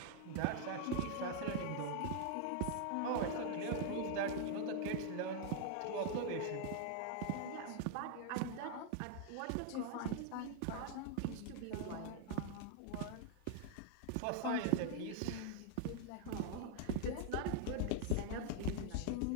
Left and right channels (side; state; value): both; different; correlation 0.00